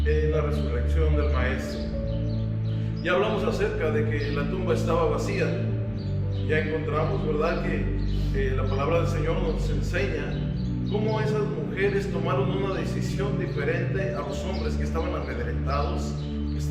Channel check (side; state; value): both; identical; correlation 1.00